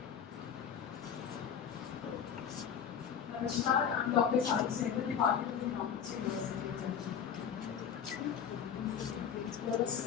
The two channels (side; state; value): right; quieter; 7.9 dB